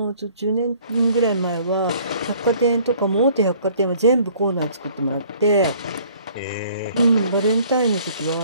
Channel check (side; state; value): both; inverted; correlation -0.56